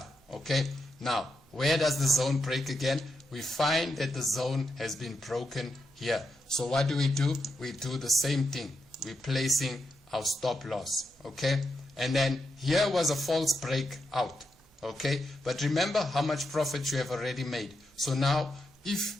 Okay, now where does the zone break again? We find that the zone has been broken here. So what do? We do the same thing. We're placing our stop loss. Okay, and then here was a false breakout. Okay, but remember how much profit you have already made. So now if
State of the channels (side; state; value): both; normal; correlation 0.85